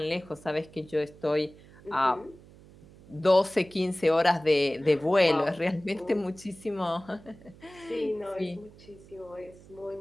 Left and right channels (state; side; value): noise; right; hum, 22 dB below the sound